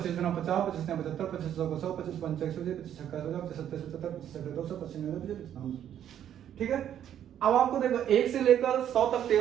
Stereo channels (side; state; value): left; quieter; 10.2 dB